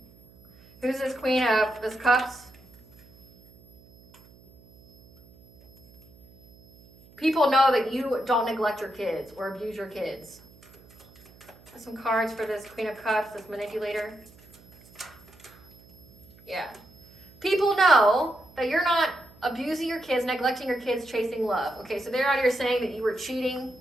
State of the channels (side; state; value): right; noise; hum, 26 dB below the sound